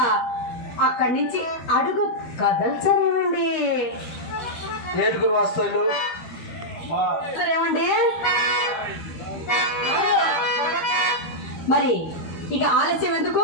అక్కడి నుంచి అడుగు కదల్చరేమండి? లేదు గురు వస్తాను ఏమండి? మరి ఇక ఆలస్యం ఎందుకు?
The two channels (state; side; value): late; right; 13 ms